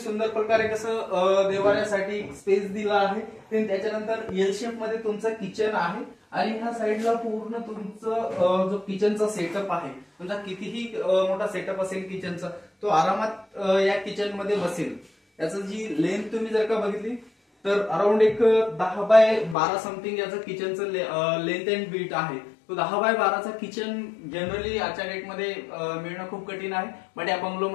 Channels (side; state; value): right; drops out; at 19.6 s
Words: प्रकारे कसं देवाऱ्यासाठी स्पेस दिला आहे। त्याच्यानंतर एल शेप मध्ये तुमचं किचन आहे, आणि ह्या साईडला पूर्ण तुमचं जो किचनचा सेटअप आहे, तुमचा कितीही मोठा सेटअप असेल किचनचा, तो आरामात या किचन मध्ये बसेल। याचं जी लेंथ तुम्ही जर का बघितली तर अराउंड एक 10 बाय 12 समथिंग याचं किचनचं लेंथ अँड बीट आहे। तो 10 बाय 12चा किचन जनरली आजच्या डेटमध्ये मिळणं खूप कठीण आहे, बट या